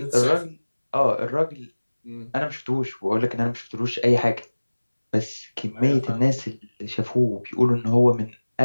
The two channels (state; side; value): inverted; both; correlation -1.00